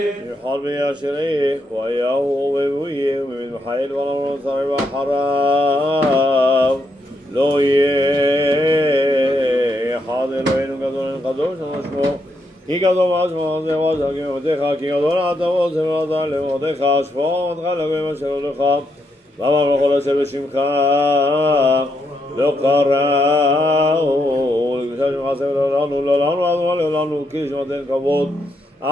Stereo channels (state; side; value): normal; both; correlation 0.79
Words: יחל וישריך ויהו ובויה ומן חיל ולמרות שרי ואחריו לא יהיה אחד אלוהינו גדול קדוש ושמו כי גדול משמו זה ועזר כמותיך כי גדול אתה ועוזר ועזר למותיך שפור עמדך לגויים אשר הולך ואמר בכל אשר בשמך לא קראו לקדושה שמך עשה ולעולנו לעולנו כי שמתן כבוד